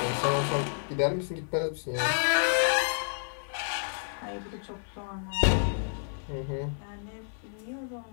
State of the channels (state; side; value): silent; right; 58 dB below the other